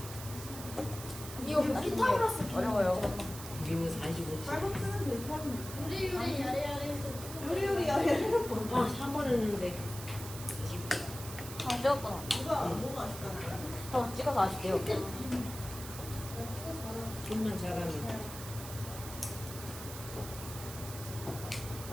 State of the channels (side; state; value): right; noise; hiss, 11 dB below the sound